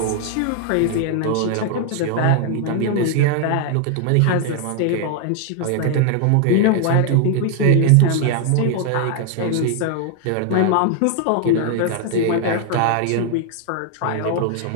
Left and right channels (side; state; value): both; different; correlation 0.00